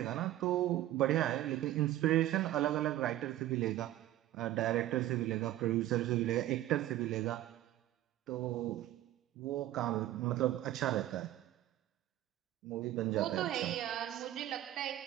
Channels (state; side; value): quieter; left; 14.2 dB